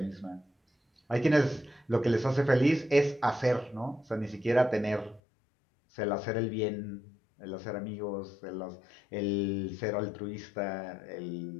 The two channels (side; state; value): right; drops out; at 5.2 s